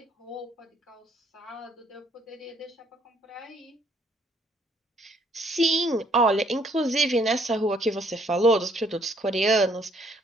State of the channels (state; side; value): normal; both; correlation 0.65